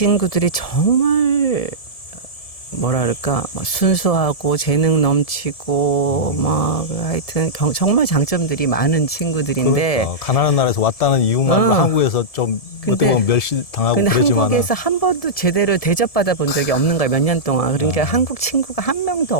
정말 뭐랄까 순수하고 재능 넘치고 막 하여튼 정말 장점들이 많은 친구들인데 그러니까 가난한 나라에서 왔다는 이유만 한국에서 좀 어떻게 보면 멸시당하고 근데 그러지만 한국에서 한 번도 제대로 대접받아 본 적이 없는 거예요. 몇 년 동안. 그러니까 한국 친구가 한 명도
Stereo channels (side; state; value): right; late; 1.7 ms